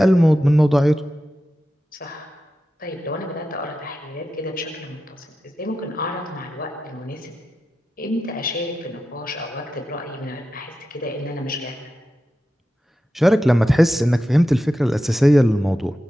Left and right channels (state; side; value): normal; both; correlation 0.91